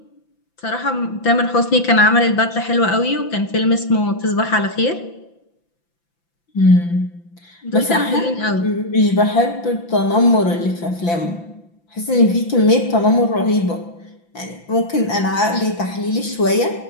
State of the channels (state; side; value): late; right; 5.9 ms